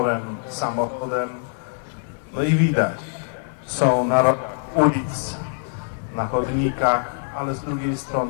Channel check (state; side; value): silent; right; digital silence